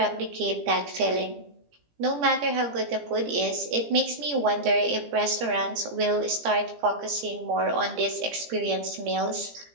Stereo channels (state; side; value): late; left; 17 ms